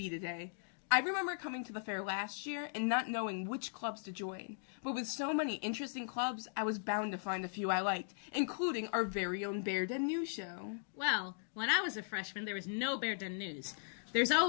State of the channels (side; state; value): right; silent; digital silence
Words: today. I remember coming to the fair last year and not knowing which clubs to join. But with so many interesting clubs, I was bound to find a few I liked, including our very own Bear Den News show. Well, when I was a freshman, there was no Bear Den News. There's